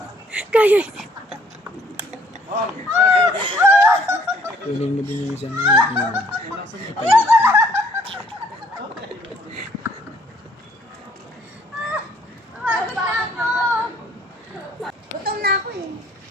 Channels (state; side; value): normal; both; correlation 0.62